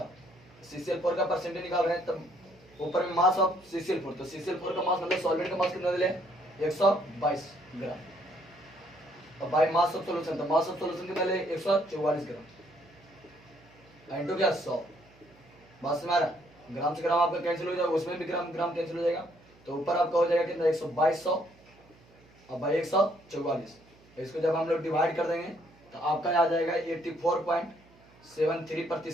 CCl4 का परसेंटेज निकाल रहे हैं। तब ऊपर में मास ऑफ CCl4, तो CCl4 का मास मतलब सॉल्वेंट का मास कितना दिले 122 ग्राम, और बाई मास ऑफ सॉल्यूशन, तो मास ऑफ सॉल्यूशन कितना ले 144 ग्राम, इनटू क्या 100, बात समझ आ रहा। ग्राम से ग्राम आपका कैंसिल हो जाएगा, उसमें भी ग्राम ग्राम कैंसिल हो जाएगा, तो ऊपर आपका हो जाएगा कितना 12200 और भाई 144। इसको जब हम लोग डिवाइड कर देंगे तो आपका आ जाएगा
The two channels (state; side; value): noise; right; hum, 28 dB below the sound